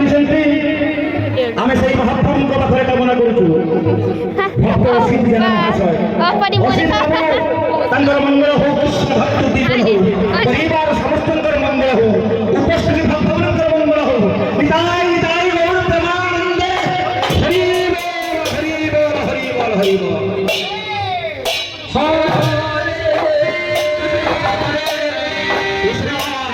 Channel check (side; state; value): both; identical; correlation 1.00